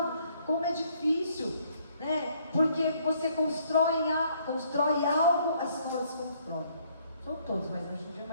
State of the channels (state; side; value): inverted; both; correlation -0.66